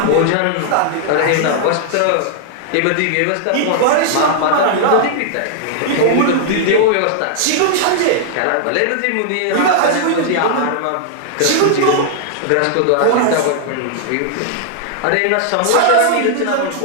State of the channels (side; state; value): both; different; correlation -0.01